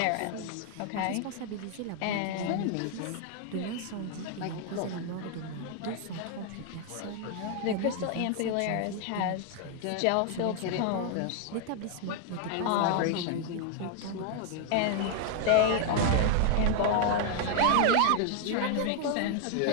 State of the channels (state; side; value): different; both; correlation 0.00